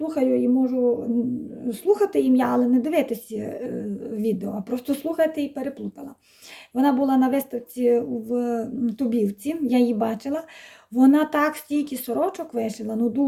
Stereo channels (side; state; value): both; identical; correlation 1.00